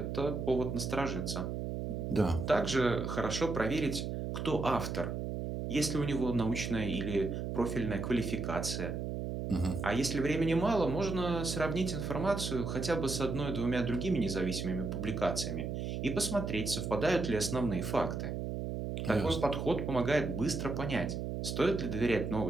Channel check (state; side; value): noise; right; hum, 3 dB below the sound